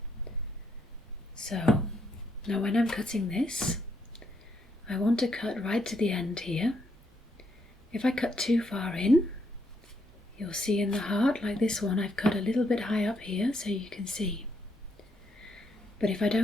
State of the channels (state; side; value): normal; both; correlation 0.76